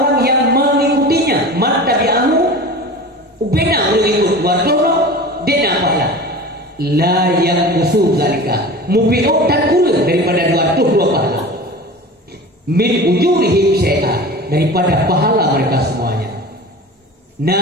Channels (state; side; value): normal; both; correlation 0.35